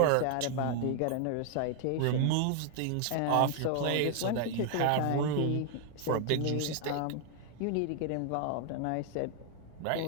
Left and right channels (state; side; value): different; both; correlation 0.00